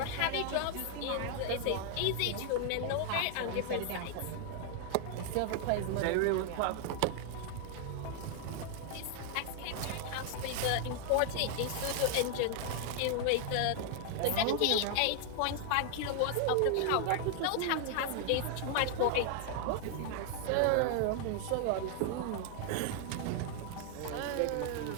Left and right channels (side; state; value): both; different; correlation 0.00